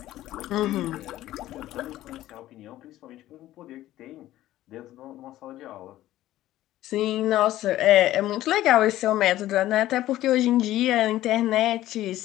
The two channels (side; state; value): right; quieter; 14.6 dB